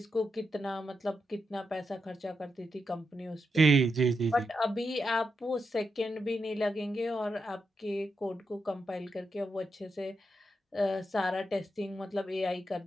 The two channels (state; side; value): normal; both; correlation 0.85